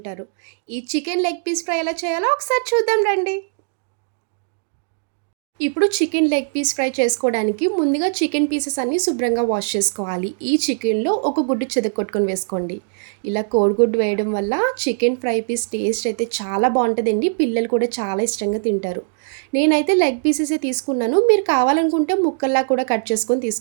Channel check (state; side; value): silent; left; digital silence